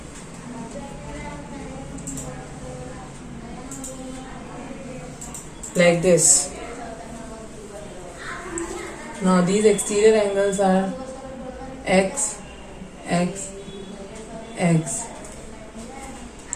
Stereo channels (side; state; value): both; identical; correlation 1.00